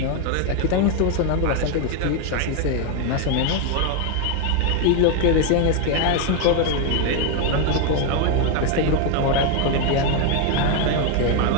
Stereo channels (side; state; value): both; different; correlation 0.01